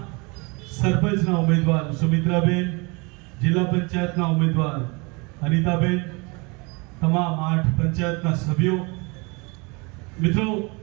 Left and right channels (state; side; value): quieter; left; 28.6 dB